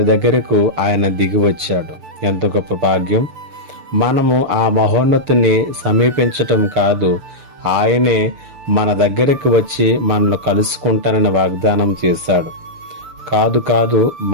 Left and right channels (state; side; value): late; left; 6.8 ms